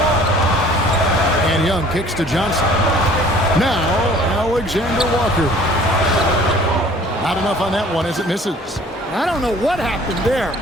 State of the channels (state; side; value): normal; both; correlation 0.52